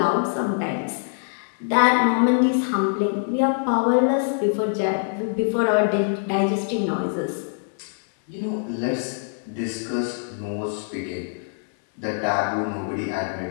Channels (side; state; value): right; silent; 63 dB below the other